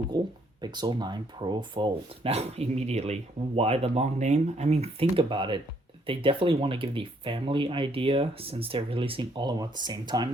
Pixel 9 Pro Fold. Now, immediately, why the long name? I mean, think about it. They definitely want to give the family idea since they're releasing all of them at the same time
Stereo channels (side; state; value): both; normal; correlation 0.68